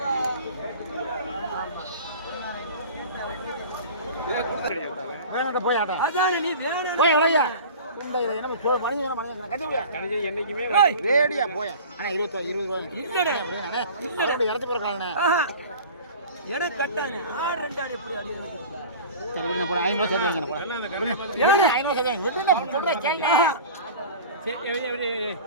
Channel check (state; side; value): inverted; both; correlation -0.38